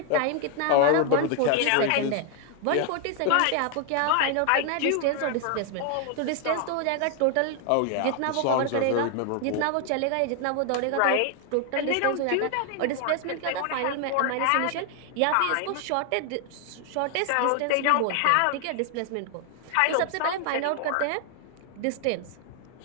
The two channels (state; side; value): different; both; correlation 0.00